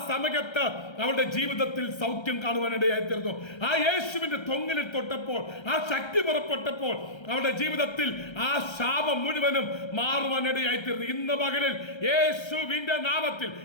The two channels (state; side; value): late; right; 1.3 ms